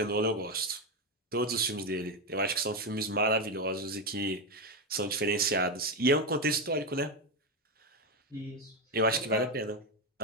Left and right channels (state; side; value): normal; both; correlation 0.09